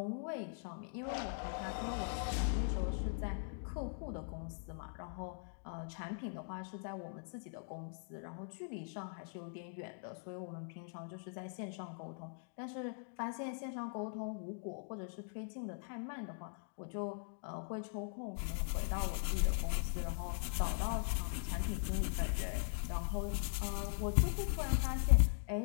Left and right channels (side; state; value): right; silent; digital silence